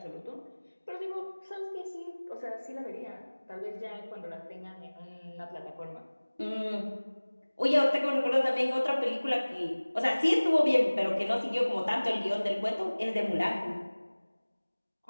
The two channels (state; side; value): inverted; both; correlation -1.00